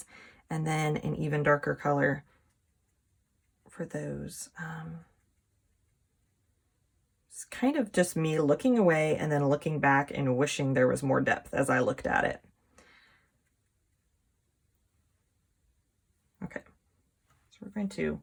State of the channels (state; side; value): identical; both; correlation 1.00